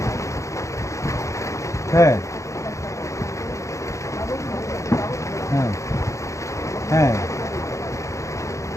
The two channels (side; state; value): right; late; 0.15 ms